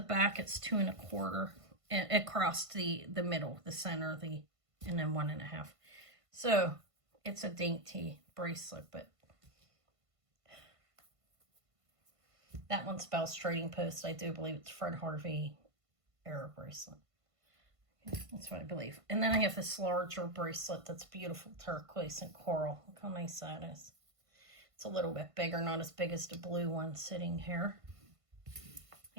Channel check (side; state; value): left; late; 1.5 ms